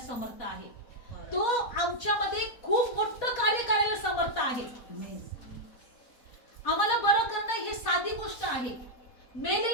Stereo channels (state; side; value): late; right; 4.1 ms